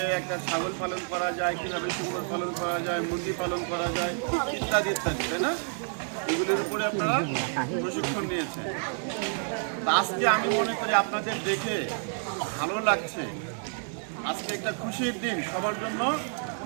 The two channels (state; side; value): silent; left; 58 dB below the other